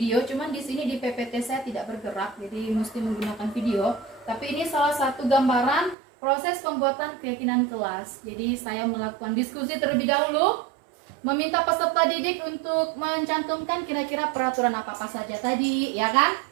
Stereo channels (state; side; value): drops out; left; at 6.0 s